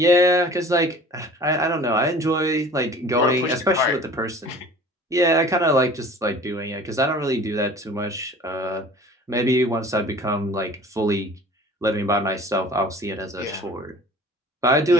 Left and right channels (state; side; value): normal; both; correlation 0.45